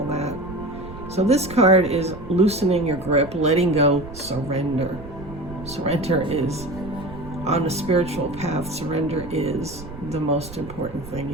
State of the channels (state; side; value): noise; right; rumble, 14 dB below the sound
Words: that. So this card is loosening your grip, letting go, surrender. Surrender is, on a spiritual path, surrender is the most important thing